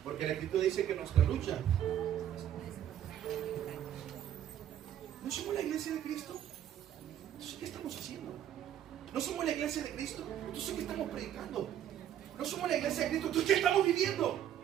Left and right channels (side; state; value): left; quieter; 10.7 dB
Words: Porque la Escritura dice que nuestra lucha, ¿no somos la iglesia de Cristo? Entonces, ¿qué estamos haciendo? ¿No somos la iglesia de Cristo? Entonces, ¿qué estamos predicando? ¿No somos la iglesia de Cristo? Entonces, ¿qué estamos viviendo?